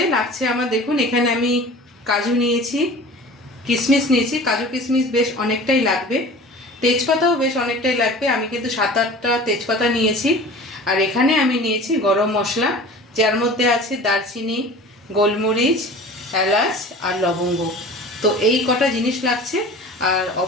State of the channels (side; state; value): both; normal; correlation 0.41